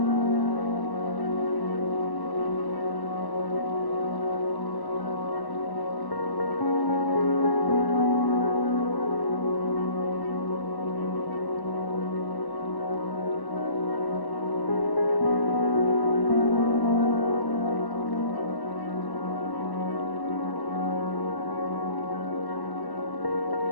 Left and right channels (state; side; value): late; right; 1.1 ms